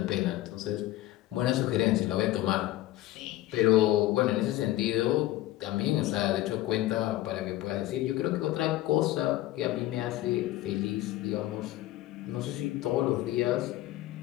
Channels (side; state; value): right; quieter; 15.7 dB